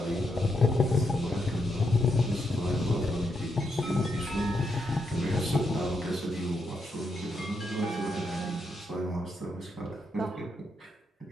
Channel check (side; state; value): both; normal; correlation 0.81